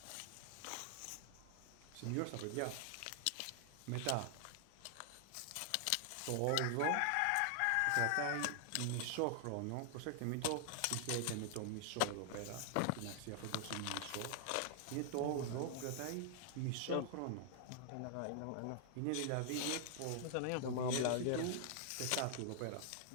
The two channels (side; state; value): both; different; correlation -0.01